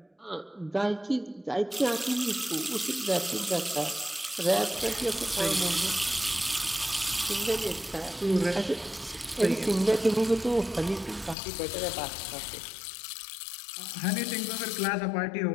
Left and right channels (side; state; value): right; drops out; at 11.4 s